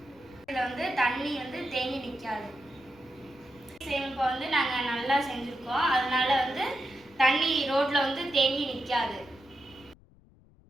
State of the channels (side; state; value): left; noise; rumble, 27 dB below the sound